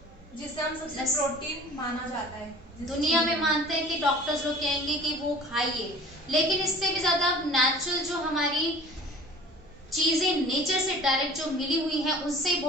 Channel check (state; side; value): noise; right; hum, 27 dB below the sound